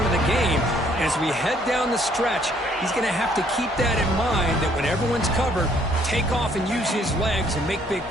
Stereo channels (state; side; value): normal; both; correlation 0.65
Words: of the game. As we head down the stretch, he's going to have to keep that in mind, that when everyone's covered, take off and use his legs and make big